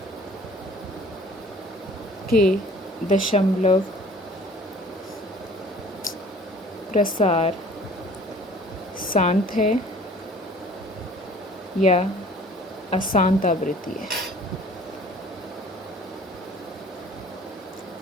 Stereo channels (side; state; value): both; normal; correlation 0.51